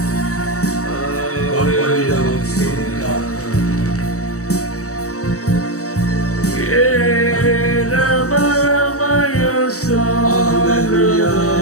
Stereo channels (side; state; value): right; late; 0.65 ms